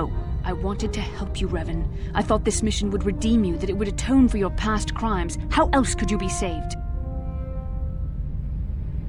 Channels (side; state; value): both; identical; correlation 1.00